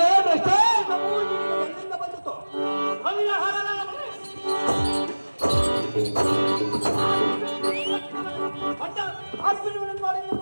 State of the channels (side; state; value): both; inverted; correlation -1.00